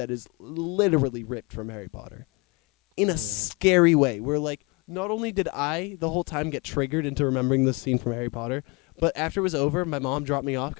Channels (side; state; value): right; quieter; 26.4 dB